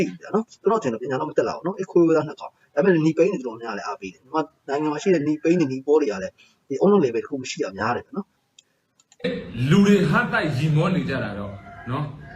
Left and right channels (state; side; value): identical; both; correlation 1.00